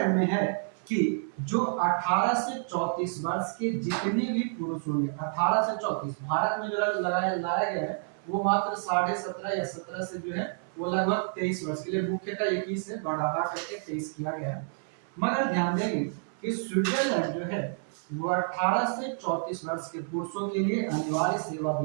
में है कि जो 18 से 34 वर्ष के जितने भी पुरुष होंगे, 18 से 34, भारत में जो लाया गया है वो मात्र 17.5 या 17 से जो है वो लगभग 23 वर्ष के लिए, मुख्यतः 21 से बढ़ा करके 23 किया गया है। मगर ध्यान देंगे कि स्विट्जरलैंड जो है वो 18 से 34 वर्ष के पुरुषों के लिए अनिवार्य सेवा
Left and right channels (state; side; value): silent; left; 58 dB below the other